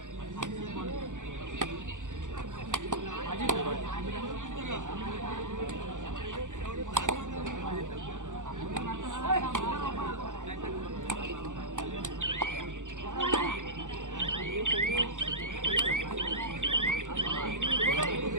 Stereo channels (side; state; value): left; late; 0.86 ms